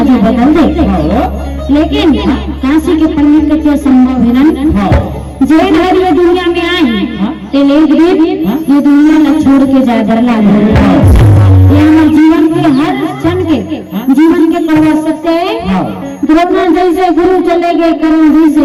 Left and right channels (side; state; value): both; identical; correlation 1.00